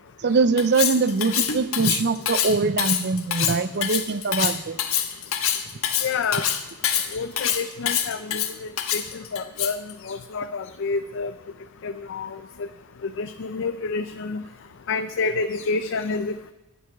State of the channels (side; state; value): both; normal; correlation 0.00